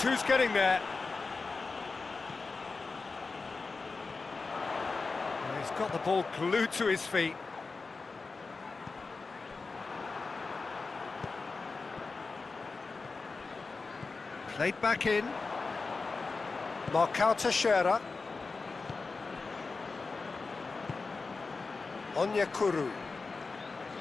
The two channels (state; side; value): quieter; right; 4.1 dB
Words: who's getting there? And he's got the ball glued to his feet. Played back in. Marcao Teixeira. Onyekuru.